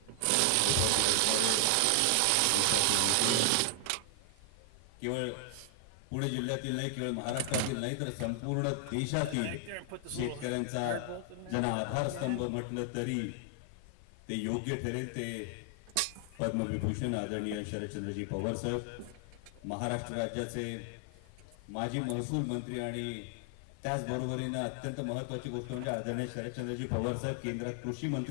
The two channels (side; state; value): both; different; correlation 0.00